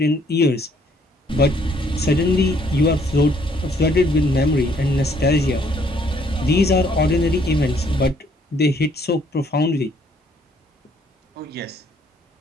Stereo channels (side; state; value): both; normal; correlation 0.65